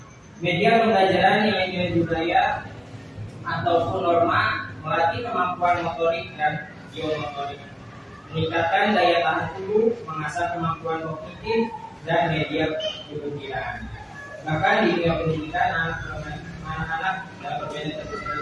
Media pembelajaran nilai-nilai budaya ataupun norma melatih kemampuan motorik dan geomotorik, meningkatkan daya tahan tubuh, mengasah kemampuan kognitif dan media pembelajaran. Bahkan di dunia pendidikan, anak-anak dalam permainan tradisional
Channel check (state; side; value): identical; both; correlation 1.00